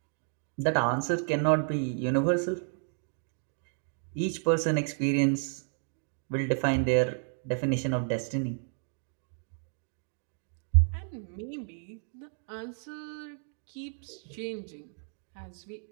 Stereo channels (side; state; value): left; silent; 57 dB below the other